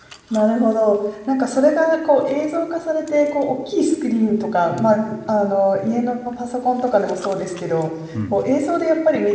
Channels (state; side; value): identical; both; correlation 1.00